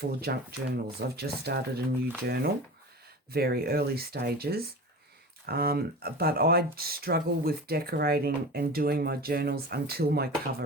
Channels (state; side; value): normal; both; correlation 0.32